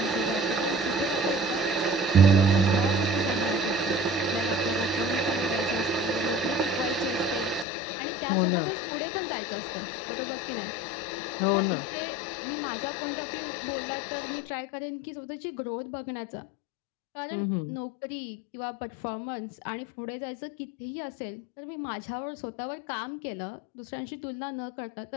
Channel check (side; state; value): right; drops out; at 7.7 s